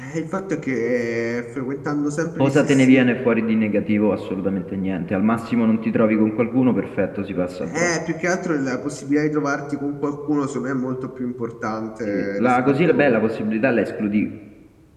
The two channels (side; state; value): both; identical; correlation 1.00